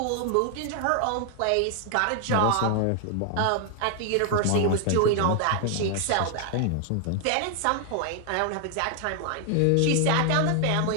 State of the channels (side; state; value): both; different; correlation 0.00